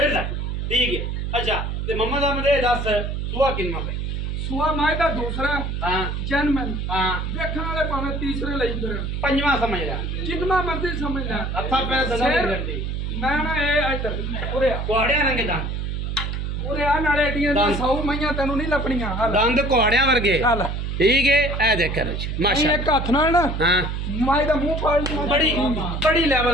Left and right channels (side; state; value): right; noise; hum, 3 dB below the sound